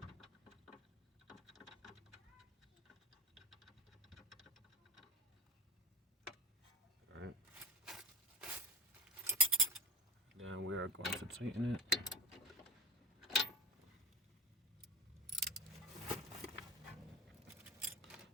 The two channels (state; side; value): normal; both; correlation 0.32